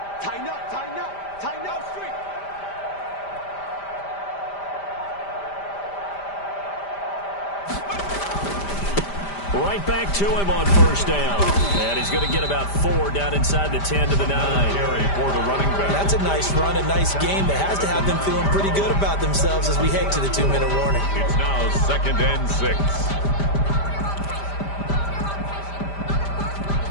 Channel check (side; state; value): right; late; 5.0 ms